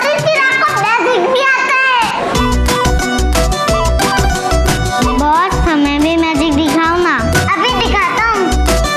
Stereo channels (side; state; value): both; identical; correlation 1.00